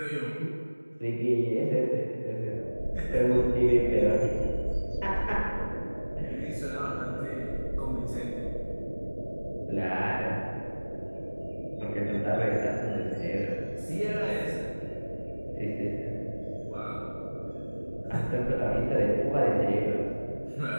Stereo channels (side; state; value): both; inverted; correlation -1.00